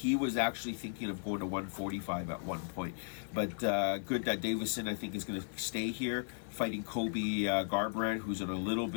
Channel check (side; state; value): right; silent; digital silence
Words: was actually thinking of going to 145 at one point. But good that Davison, I think, is going to stay here fighting Kobe Garbrandt, who's in a little